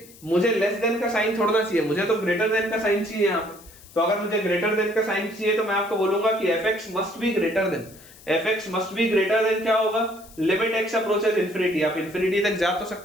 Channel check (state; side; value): noise; left; hiss, 22 dB below the sound